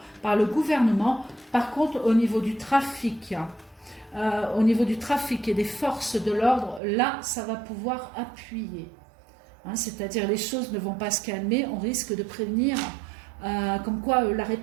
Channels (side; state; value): left; drops out; at 6.8 s